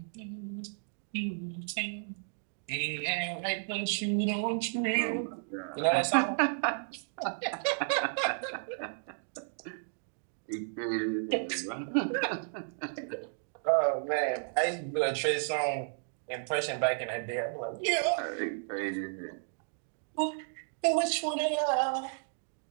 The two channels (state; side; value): silent; left; digital silence